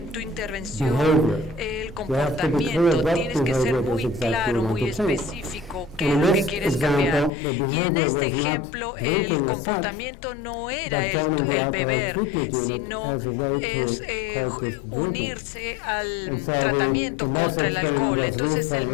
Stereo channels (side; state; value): right; drops out; at 7.3 s